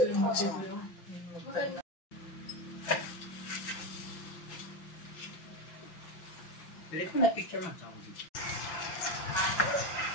Pili ko na picture man.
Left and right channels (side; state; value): right; late; 5.9 ms